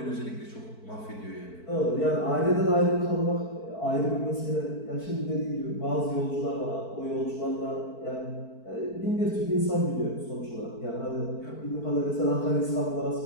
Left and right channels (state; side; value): late; right; 4.5 ms